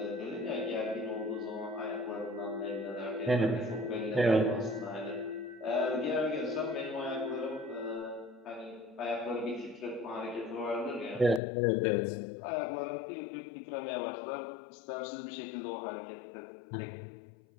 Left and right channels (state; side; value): drops out; right; at 11.4 s